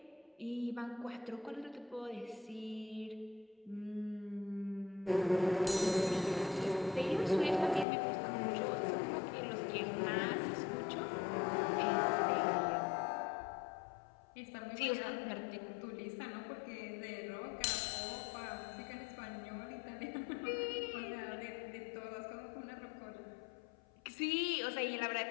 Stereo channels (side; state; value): right; drops out; at 7.9 s